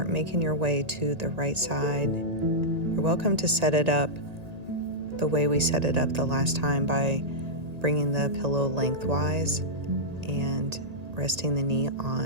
making your way to the right side. You're welcome to set it up the way we set it up the last time by bringing the pillow lengthwise and resting the knee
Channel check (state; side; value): late; left; 1.8 ms